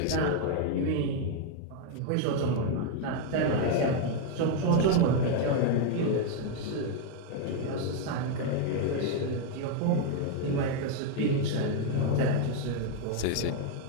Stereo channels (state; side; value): different; both; correlation 0.00